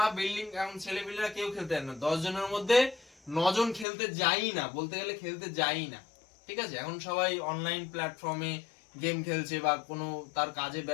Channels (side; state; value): right; drops out; at 3.9 s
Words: বিল্ডিং, এখন ছেলেপিলেরা কেউ খেলতে যায় না, 10 জনের মধ্যে 9 জন খেলতে যাই না, বলতে গেলে খেলতে যাই না। ঠিক আছে, এখন সবাই অনলাইন প্ল্যাটফর্মে গেম খেলছে বা কোনো তার কাজে